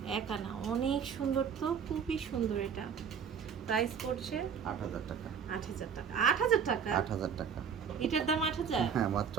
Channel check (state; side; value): quieter; left; 7.2 dB